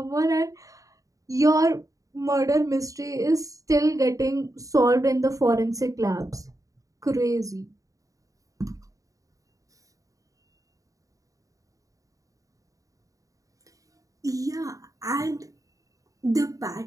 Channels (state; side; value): late; left; 0.16 ms